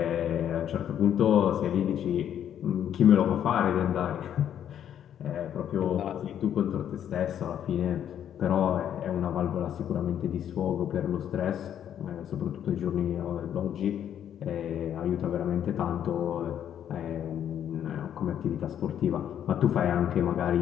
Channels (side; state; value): right; quieter; 9.8 dB